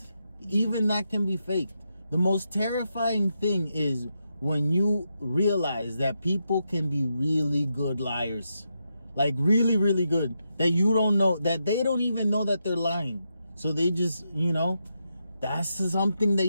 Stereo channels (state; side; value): inverted; both; correlation -0.84